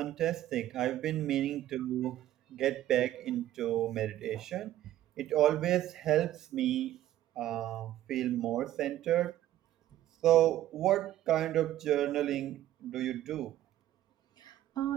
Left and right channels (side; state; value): left; quieter; 13.4 dB